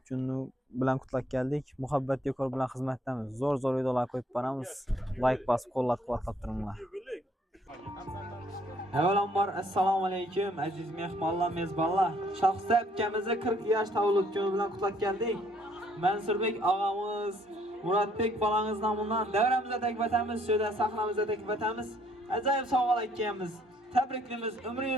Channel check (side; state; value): both; normal; correlation 0.65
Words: kuni bilan qutlab keldik. Muhabbat dekor bilan xizmatdamiz. Zo'r videolar qo'yib boramiz. Like bosib, qo'llab-quvvatlab turinglar. Avvalambor assalomu alaykum aziz mehmonlar, mezbonlar. Shoxista akamizni 40 yosh tavallud kuni bilan qutlab keldik. Mansurbek og'amiz, Muratbek bolangiz nomidan davramizda taklif etamiz, shunda sahnamizda taklif etamiz. Ajoyib sovg'alar akamiz. Tabriklaymiz,